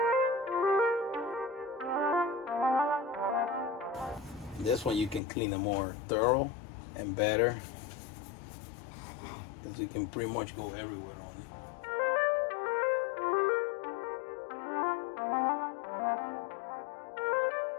This one you can clean it more thorough and better, because you can pretty much go everywhere on it.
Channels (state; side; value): drops out; right; at 5.2 s